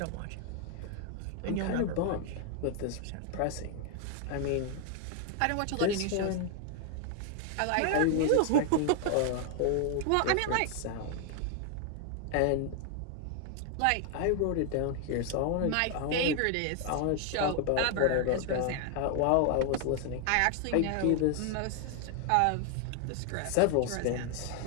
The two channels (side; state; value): both; different; correlation 0.00